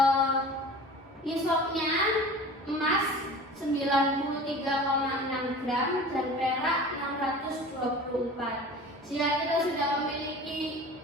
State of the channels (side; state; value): both; normal; correlation 0.39